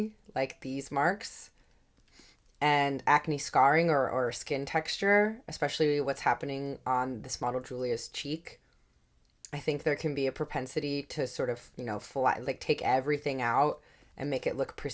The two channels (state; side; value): identical; both; correlation 1.00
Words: like these marks, and acne scarring or skin texture, especially what's happening on this model Julia's cheek. I think there can be a propensity to sort of, take everything out and make it look